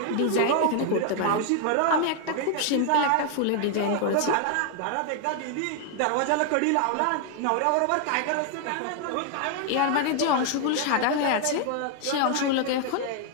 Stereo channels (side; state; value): both; different; correlation 0.00